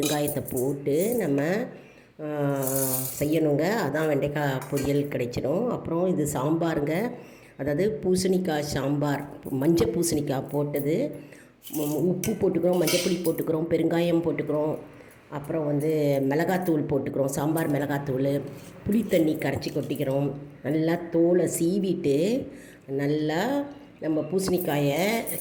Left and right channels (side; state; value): both; identical; correlation 1.00